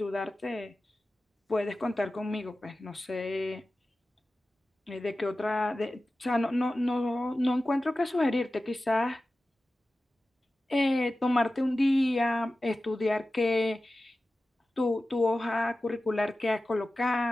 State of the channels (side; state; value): both; normal; correlation 0.95